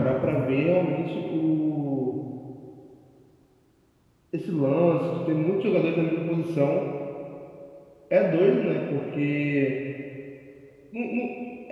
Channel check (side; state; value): both; identical; correlation 1.00